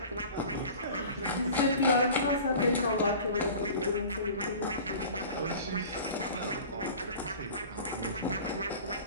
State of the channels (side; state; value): both; inverted; correlation -0.41